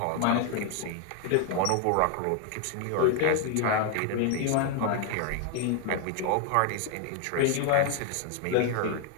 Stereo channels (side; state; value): both; different; correlation 0.00